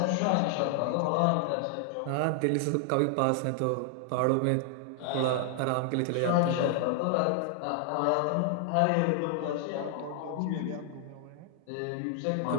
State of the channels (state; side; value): different; both; correlation 0.00